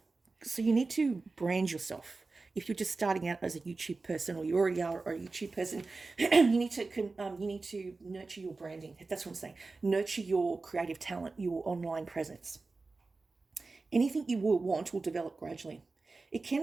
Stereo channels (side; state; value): left; quieter; 3.8 dB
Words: So you need to brand yourself. If you're just starting out as a YouTube person, or you already are a YouTube person, you need to nurture your branding. That's what I'm saying. Nurture your creative talent, your online presence. Anything you will want will develop gradually. It can